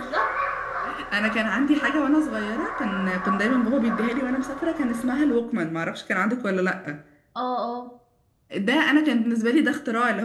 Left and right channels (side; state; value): both; identical; correlation 1.00